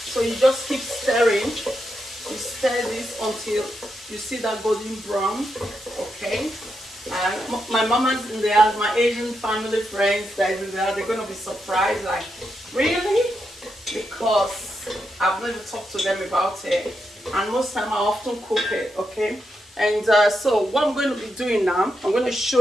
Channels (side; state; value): both; normal; correlation 0.84